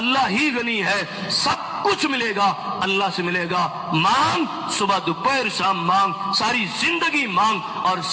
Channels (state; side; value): identical; both; correlation 1.00